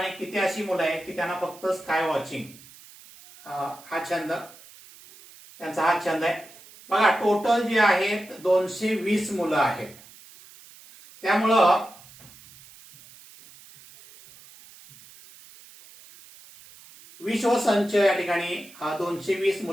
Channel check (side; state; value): right; noise; hiss, 22 dB below the sound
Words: किती अशी मुलं आहेत की त्यांना फक्त स्काय वॉचिंग हा छंद त्यांचा हा छंद आहे. बघा टोटल जे आहेत 220 मुलं आहेत. त्यामुळं विश्वसंच या ठिकाणी 220